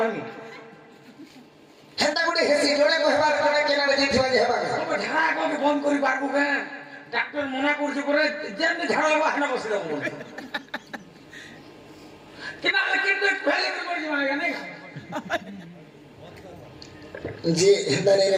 হেন্তা গুটে হেসি জোড়ে কহবা জোড়ে কেনারে জিতবা যে হেবা তবে ঝাড়া কবে বন্ধ করি পারবো কেন ডাক্তার মনা করছে করে যেমনি ঝাড়া লাগবা হানা বসে যাবো কিনা কিন্তু ফেলে করছি মানে কেন যে হেন্তা নেই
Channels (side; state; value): both; identical; correlation 1.00